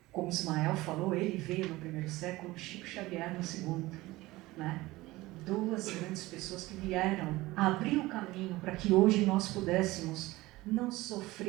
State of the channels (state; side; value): quieter; left; 19.3 dB